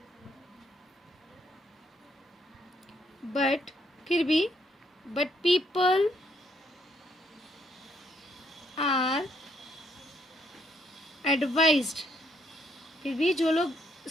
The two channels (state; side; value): normal; both; correlation 0.71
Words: but फिर भी बट पीपल आर एडवाइज्ड, फिर भी जो लोग